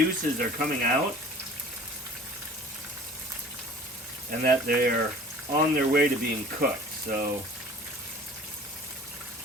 are coming out and that they're on their way to being cooked. So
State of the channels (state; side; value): normal; both; correlation 0.46